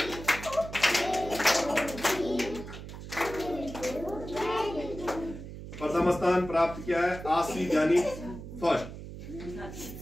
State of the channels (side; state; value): right; noise; hum, 11 dB below the sound